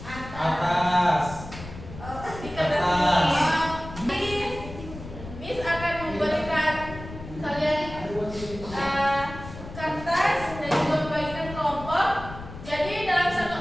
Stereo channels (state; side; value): noise; left; rumble, 13 dB below the sound